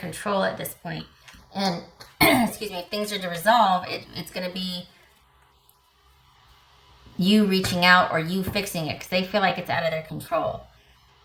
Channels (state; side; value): identical; both; correlation 1.00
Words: at this point. And, excuse me, if things are to resolve, it's going to be you reaching out or you fixing it because they feel like it's out of their control.